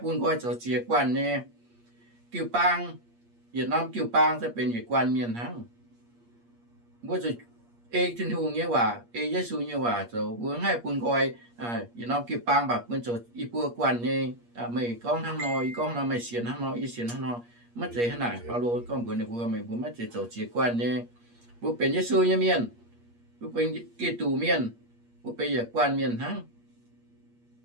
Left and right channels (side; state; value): left; late; 8.5 ms